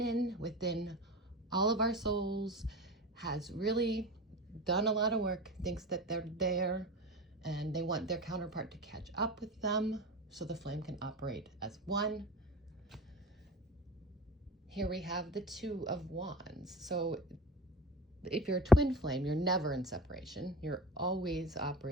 within all of our souls has really done a lot of work, thinks that they're there, and they want their counterpart to catch up with them so the flame can operate as one. Here we have the Two of Wands. So if you're a twin flame, you're never in separation. You're always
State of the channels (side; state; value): both; normal; correlation 0.32